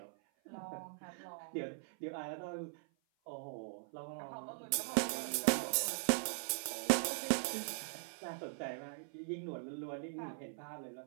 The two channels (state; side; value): silent; left; 50 dB below the other